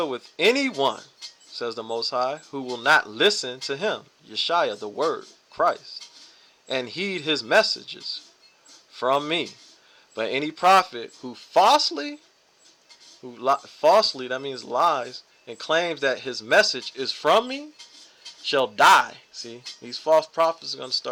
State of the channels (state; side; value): identical; both; correlation 1.00